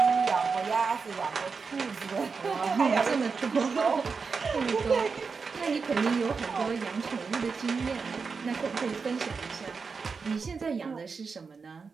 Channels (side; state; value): left; quieter; 5.1 dB